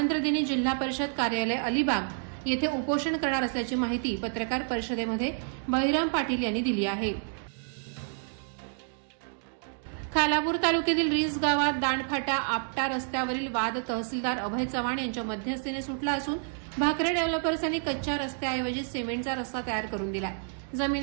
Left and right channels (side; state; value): left; silent; 58 dB below the other